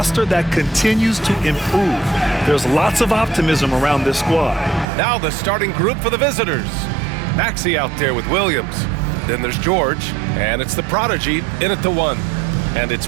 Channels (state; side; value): drops out; left; at 4.9 s